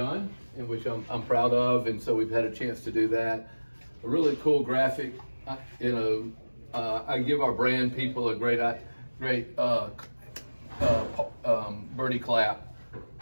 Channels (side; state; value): both; inverted; correlation -1.00